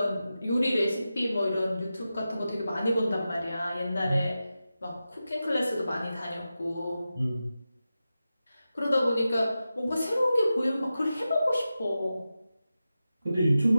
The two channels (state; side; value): inverted; both; correlation -0.92